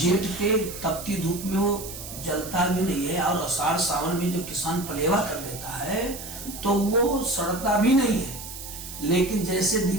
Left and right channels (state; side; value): noise; right; hiss, 11 dB below the sound